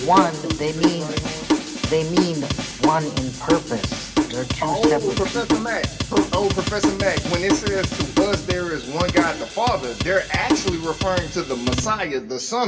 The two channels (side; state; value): both; identical; correlation 1.00